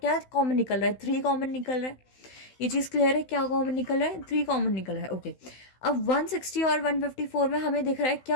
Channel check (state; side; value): late; right; 16 ms